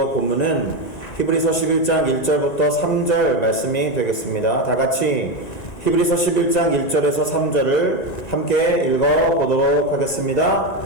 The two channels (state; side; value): late; right; 1.9 ms